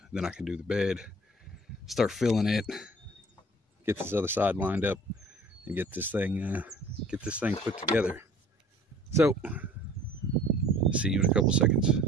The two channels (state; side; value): normal; both; correlation 0.50